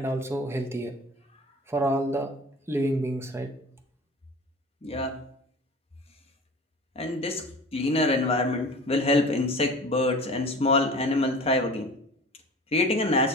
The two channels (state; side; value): normal; both; correlation 0.39